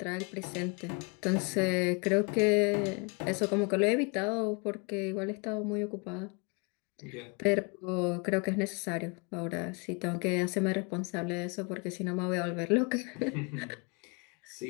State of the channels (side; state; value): right; quieter; 31.1 dB